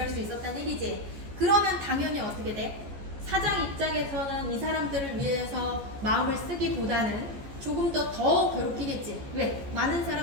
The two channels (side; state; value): left; late; 14 ms